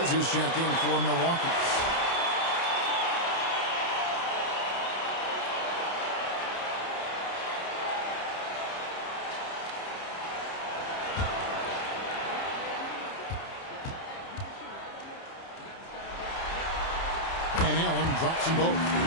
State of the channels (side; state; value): right; late; 30 ms